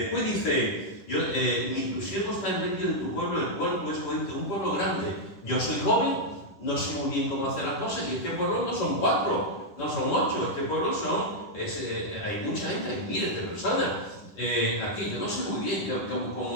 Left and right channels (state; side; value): late; right; 10 ms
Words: dice, tu siervo está en medio de tu pueblo, el cual tú escogiste, un pueblo grande. Yo soy joven, no sé muy bien cómo hacer las cosas, y este pueblo no son 4, no son 8, este pueblo hay mucha gente, hay miles de personas. Aquí yo no sé muy bien